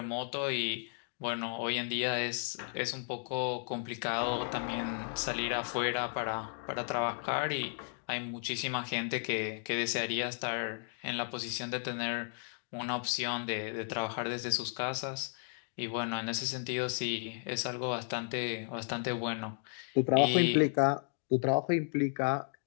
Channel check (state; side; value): silent; right; 55 dB below the other